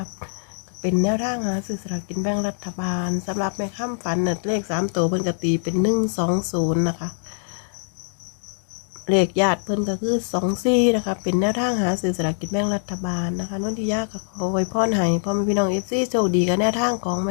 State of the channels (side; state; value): right; silent; digital silence